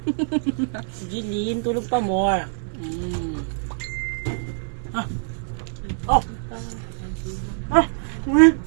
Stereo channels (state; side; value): silent; left; digital silence